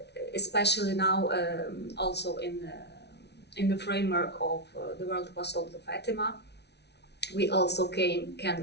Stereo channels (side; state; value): right; late; 0.49 ms